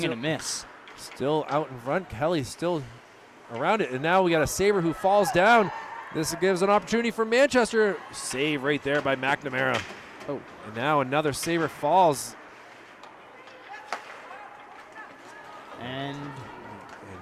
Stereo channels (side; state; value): both; identical; correlation 1.00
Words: and a miss. Still out in front. Kelly still around it. And now we got a Sabre who falls down. This gives an opportunity for Manchester. Save right there by McNamara. Oh. And now another Sabre falls. And